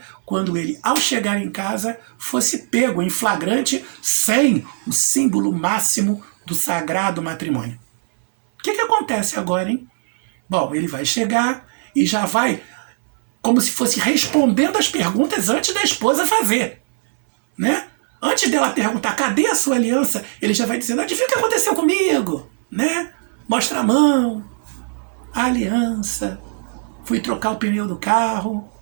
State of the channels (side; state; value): left; silent; 60 dB below the other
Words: quando ele, ao chegar em casa, fosse pego em flagrante sem o símbolo máximo do sagrado matrimônio. O que acontece agora, hein? Bom, ele vai chegar e já vai como se fosse respondendo as perguntas antes da esposa fazer, né? Antes dela perguntar, cadê a sua aliança? Ele já vai dizendo, adivinha o que aconteceu comigo? Né? Mostra a mão, a aliança, fui trocar o pneu do carro,